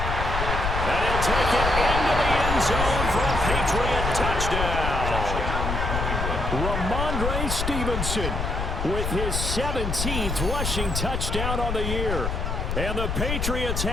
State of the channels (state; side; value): noise; left; rumble, 2 dB below the sound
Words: he'll take it into the end zone for a Patriot touchdown. Ramondre Stevenson with his 17th rushing touchdown on the year. And the Patriots